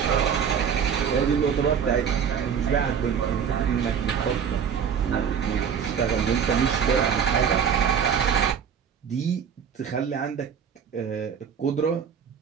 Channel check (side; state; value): left; quieter; 7.5 dB